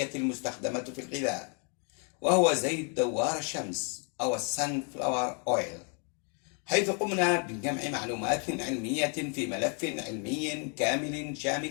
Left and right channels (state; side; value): quieter; right; 38.6 dB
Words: المستخدمة في الغذاء، وهو زيت دوار الشمس أو السنفلاور أويل، حيث قمنا بجمع معلومات علمية في ملف علمي كامل